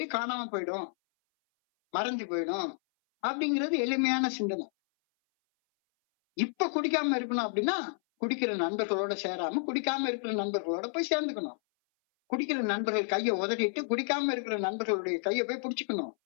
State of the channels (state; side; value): silent; right; 57 dB below the other